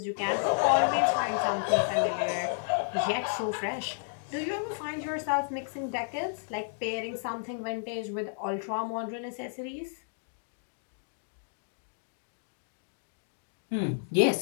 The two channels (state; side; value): silent; right; digital silence